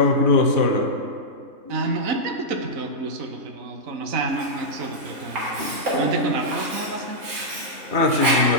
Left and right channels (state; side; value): late; left; 3.2 ms